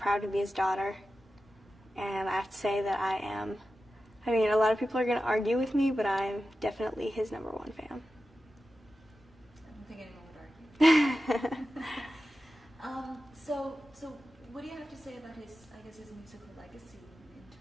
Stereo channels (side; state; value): both; normal; correlation 0.92